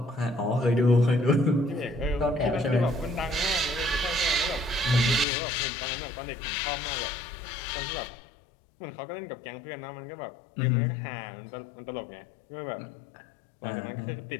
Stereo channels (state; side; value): drops out; right; at 5.2 s